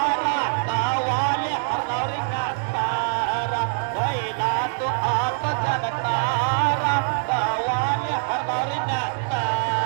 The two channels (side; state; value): left; silent; 63 dB below the other